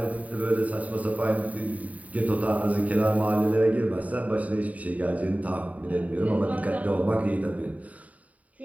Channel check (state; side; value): late; left; 0.071 ms